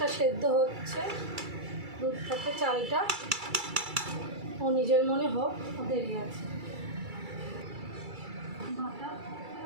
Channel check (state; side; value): late; left; 2.3 ms